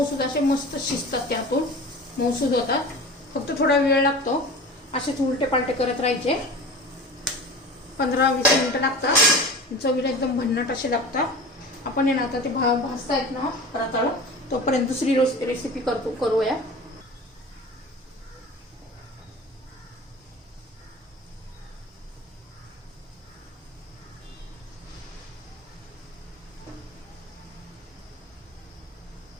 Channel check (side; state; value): both; normal; correlation 0.35